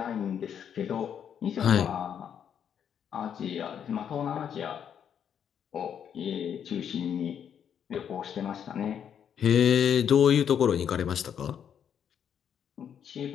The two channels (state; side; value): quieter; right; 8.5 dB